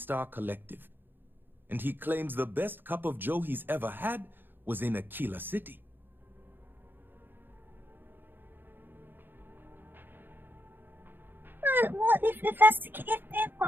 Collective, and he claims the best cup of joe he's ever had was in Aquila City. What if that's the case?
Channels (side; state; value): left; late; 0.097 ms